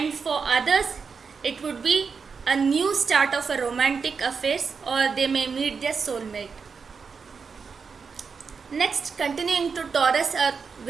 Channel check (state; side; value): quieter; left; 5.5 dB